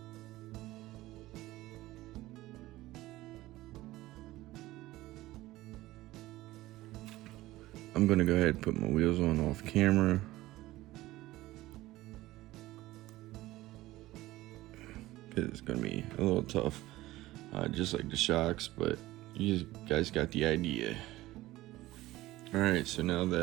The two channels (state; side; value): quieter; left; 17.2 dB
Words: I'm gonna go ahead and put my wheels on off camera. It's gonna be a little tough, just like the shocks, but you guys got the idea. All right, so now